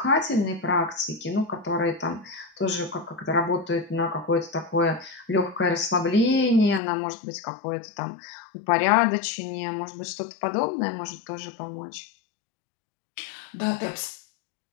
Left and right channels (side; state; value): right; drops out; at 6.8 s